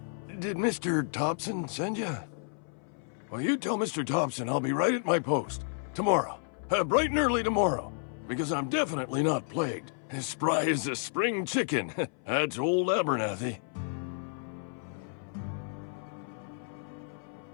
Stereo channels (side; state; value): right; silent; 57 dB below the other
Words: Thompson send you? Well, you tell Mr. Thompson I'll be right at my post. Tomorrow. Bright and early tomorrow. Because I'm definitely not plagued. As spry as a spring chicken. That's old Abernathy.